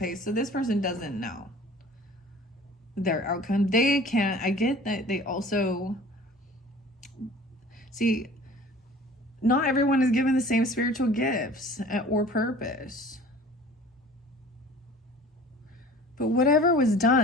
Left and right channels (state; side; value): normal; both; correlation 0.46